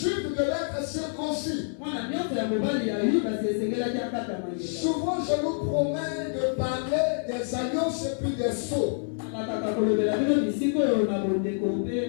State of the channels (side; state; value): right; silent; 60 dB below the other